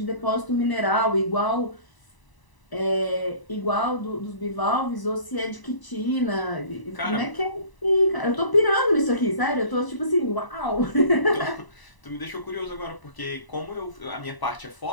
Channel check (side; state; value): right; late; 1.0 ms